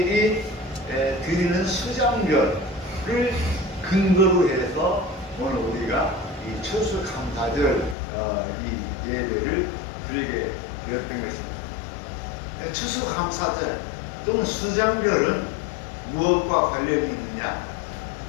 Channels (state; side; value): drops out; right; at 8.0 s